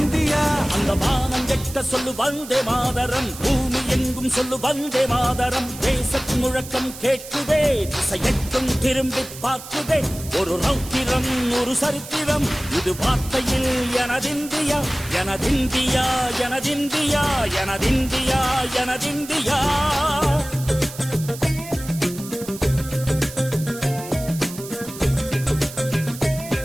அந்த வானம் வெட்ட சொல்லு வந்தே மாதரம், பூமி எங்கும் சொல்லு வந்தே மாதரம். தேசத்தின் முழக்கம் கேட்குதே, திசை எட்டும் திரும்பி பார்க்குதே. ஒரு ரௌத்திரம் ஒரு சரித்திரம், இது வார்த்தையில் எனதிந்தியா எனதிந்தியா எனதிந்தியா எனதிந்தியா எனதிந்தியா.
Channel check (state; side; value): noise; right; hiss, 14 dB below the sound